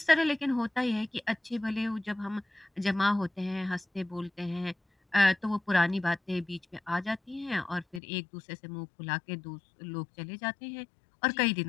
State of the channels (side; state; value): right; drops out; at 8.0 s